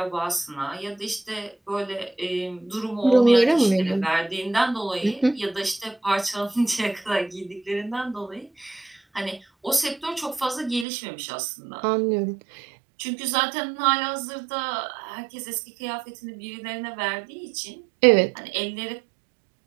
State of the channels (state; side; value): drops out; left; at 10.9 s